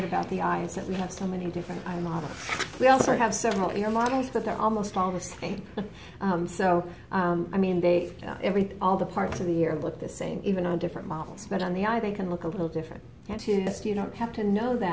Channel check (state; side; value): identical; both; correlation 1.00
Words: about the eye, is that we have so many different eye models. We also have several ear models, but they're almost all the same. I mean, all the parts of the ear look the same, even on different models. But on the eye, they can look a little different. Okay? You don't have to know